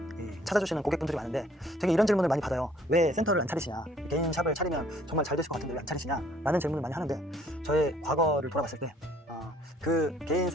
찾아주시는 고객분들이 많은데 되게 이런 질문을 많이 받아요. 왜 센터를 안 차리시냐, 개인 샵을 차리면 정말 잘 되실 것 같은데 왜 안 차리시냐 라는 질문을 많이 하는데, 저의 과거를 돌아봤을 때 그 개인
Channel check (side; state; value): both; normal; correlation 0.60